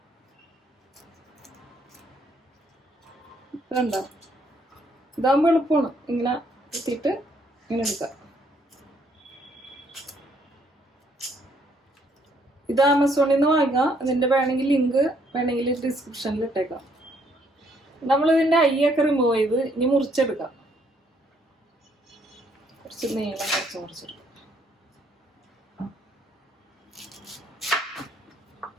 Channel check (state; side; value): normal; both; correlation 0.68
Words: കണ്ടോ, ഇതാകുമ്പോൾ എളുപ്പമാണ്. ഇങ്ങനെ എത്തിയിട്ട് ഇങ്ങനെ എടുക്കാം. ഇത് ആമസോണിൽ നിന്ന് വാങ്ങാം. ഇതിന്റെ വേണമെങ്കിൽ ലിങ്ക് വേണമെങ്കിൽ ഡിസ്ക്രിപ്ഷനിൽ ഇട്ടേക്കാം. നമ്മളിതിന്റെ ഐയൊക്കെ റിമൂവ് ചെയ്ത് ഇനി മുറിച്ചെടുക്കാം. കുറച്ച് നീളം മുറിച്ചെടുക്കാം.